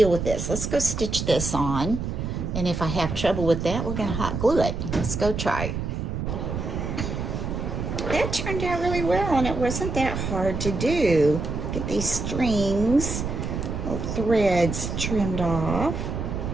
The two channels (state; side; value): noise; right; rumble, 4 dB below the sound